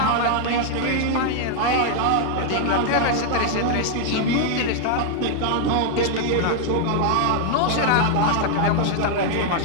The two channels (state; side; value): different; both; correlation 0.00